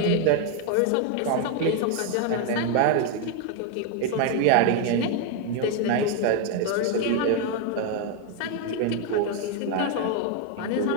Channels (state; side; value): different; both; correlation 0.01